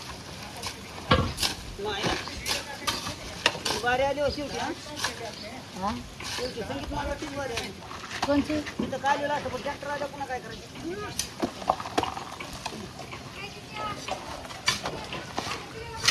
वारी आली हो शेवटी हा शेवटी संगीत मालवाची वारी आली कोणची तिथं काय लिहिलं असं पण ट्रॅक्टर आला पुन्हा काय करायचं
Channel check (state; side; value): identical; both; correlation 1.00